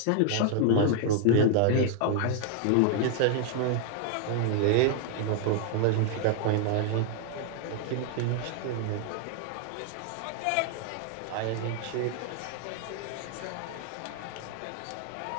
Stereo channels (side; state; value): both; different; correlation 0.00